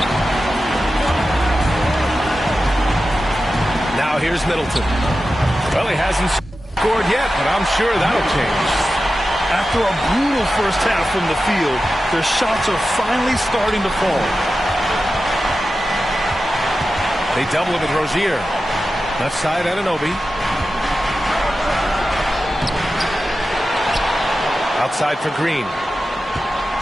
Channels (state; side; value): normal; both; correlation 0.93